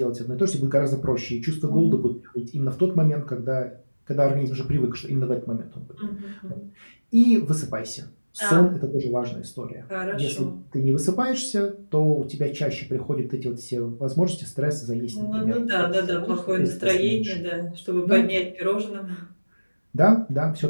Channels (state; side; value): inverted; both; correlation -1.00